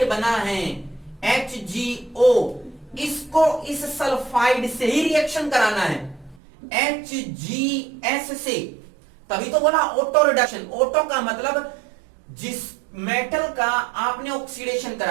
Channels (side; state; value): left; drops out; at 6.4 s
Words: बना है HgO, इसको इस सल्फाइड से ही रिएक्शन कराना है, HgS से, तभी तो बोला ऑटो रिडक्शन। ऑटो का मतलब जिस मेटल का आपने ऑक्सीडेशन